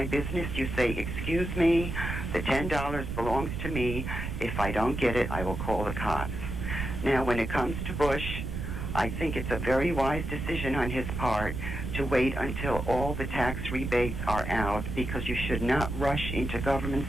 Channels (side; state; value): right; noise; rumble, 5 dB below the sound